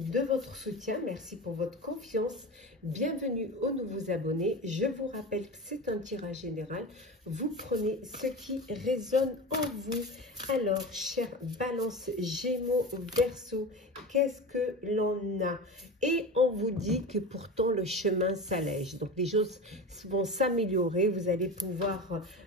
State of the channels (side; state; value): both; normal; correlation 0.28